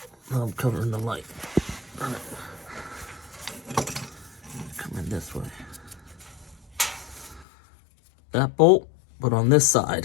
Now I'm covering the light. All right. Come in this way. That bolt, but on this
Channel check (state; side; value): drops out; right; at 7.5 s